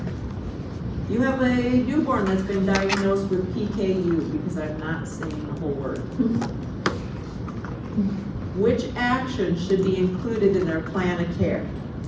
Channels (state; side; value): identical; both; correlation 1.00